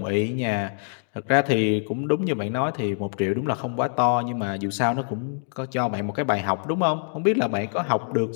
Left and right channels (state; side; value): silent; right; digital silence